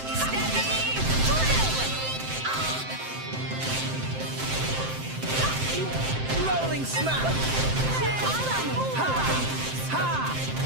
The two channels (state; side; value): late; left; 7.6 ms